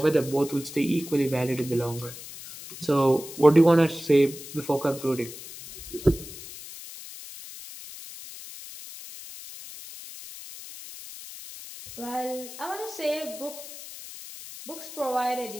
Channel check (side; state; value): left; noise; hiss, 14 dB below the sound